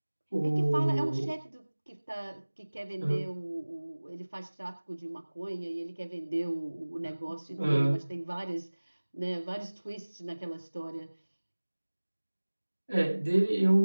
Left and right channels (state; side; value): inverted; both; correlation -1.00